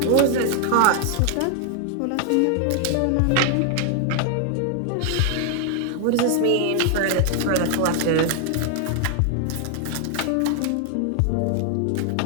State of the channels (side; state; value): both; different; correlation 0.00